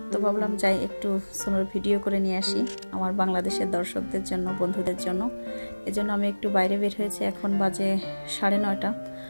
তো ভাবলাম যাই একটু স্নোর ভিডিও করে নিয়ে আসি আমার বাংলাদেশের দর্শকদের জন্য, বন্ধুদের জন্য। এজন্য আমি একটু বাইরে বের হয়েছি। এখন বাজে 9:30।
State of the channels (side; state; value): both; inverted; correlation -1.00